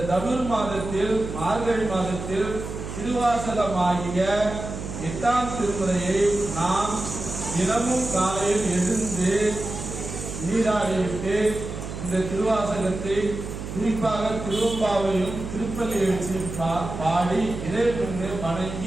தனுர் மாதத்தில் மார்கழி மாதத்தில் திருவாசகமாகிய 8ஆம் திருமுறையை நாம் தினமும் காலையில் எழுந்து நீராடிவிட்டு இந்த திருவாசகத்தை குறிப்பாக திருவம்பாவையும் திருப்பள்ளி எழுச்சியும் பாடி இறைவனை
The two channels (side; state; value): right; noise; hum, 8 dB below the sound